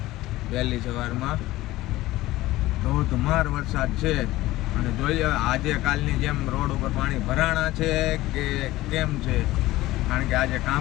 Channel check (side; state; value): right; quieter; 17.2 dB